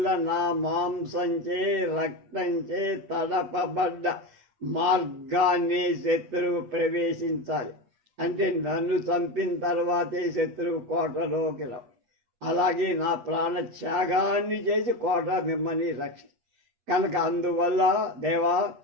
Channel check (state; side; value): late; left; 8.3 ms